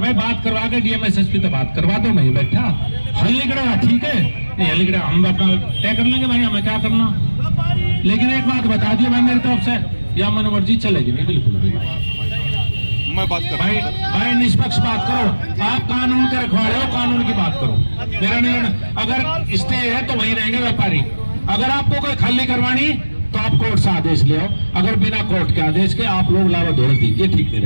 बात करवा के डीएम एसएसपी तो बात करवा दो, मैं ही बैठा हल्लीगड़ा ठीक है, नहीं हल्लीगड़ा हम अपना तय कर लेंगे भाई, हमें क्या करना। लेकिन एक बात बता दिए भाई मेरी तरफ से, या मन मर्जी चलेगी नहीं बिल्कुल भी भाई। मैं बात कर भाई निष्पक्ष बात करो, आप कानून के रखवाले हो, कानून की बात करो, मेरा नहीं। अगर स्टे है तो वही रहेंगे व्यापारी। अगर आपको कोई खाली करवानी तो आप कोर्ट से आदेश ले आओ, अगर बिना कोर्ट के आदेश के आप लोग लावा दौड़ दी, ये ठीक नहीं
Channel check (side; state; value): both; inverted; correlation -1.00